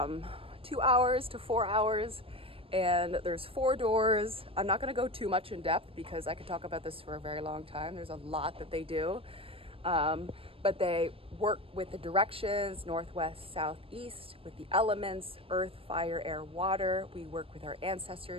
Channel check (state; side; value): late; left; 0.27 ms